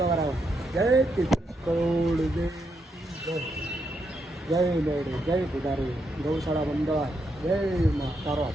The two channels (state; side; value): normal; both; correlation 0.80